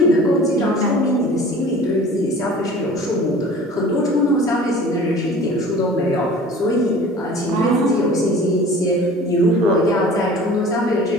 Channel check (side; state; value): both; normal; correlation 0.44